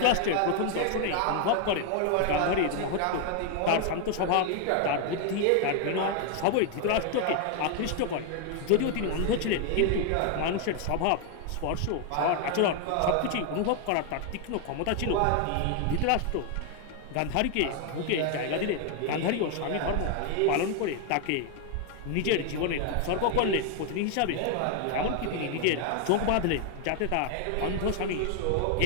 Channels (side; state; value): both; different; correlation 0.00